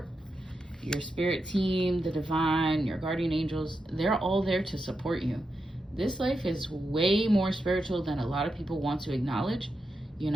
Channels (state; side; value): normal; both; correlation 0.87